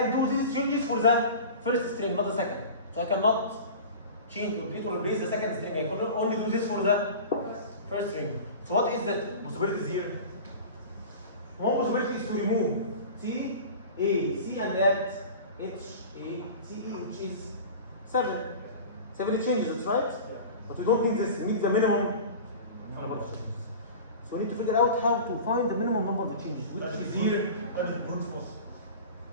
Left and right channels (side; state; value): both; inverted; correlation -0.36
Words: do these changes for the first string, not the second. So I cannot change or delete or replace the second string. I can only do this for the first string. So what is the possibilities here? One possibility is to remove C, A, C and add H, A, C, E, which is 7. 7 changes, right? But we don't need this, we need the minimum number of changes. So we need to figure out how to find the minimum number of changes, which is here. That is brute force.